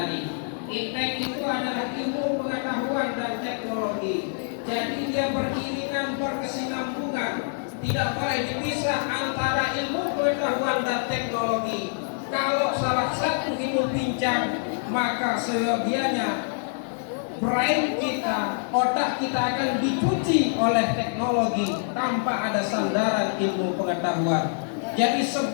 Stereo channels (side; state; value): right; silent; digital silence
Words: Iptek itu adalah ilmu pengetahuan dan teknologi. Jadi dia beriringan, berkesinambungan. Tidak boleh dipisah antara ilmu pengetahuan dan teknologi. Kalau salah satu ilmu pincang, maka seyogianya brain kita, otak kita akan dicuci oleh teknologi tanpa ada sandaran ilmu pengetahuan. Jadi